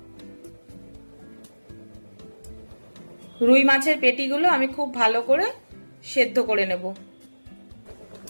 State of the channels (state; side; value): inverted; both; correlation -1.00